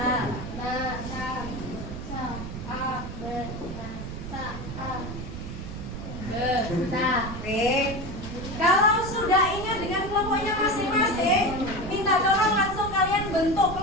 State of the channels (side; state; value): right; noise; rumble, 8 dB below the sound